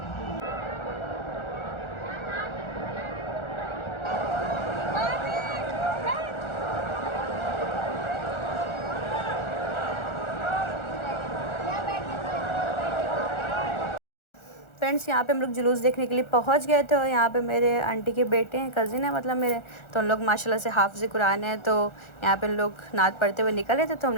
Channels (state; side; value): late; right; 1.4 ms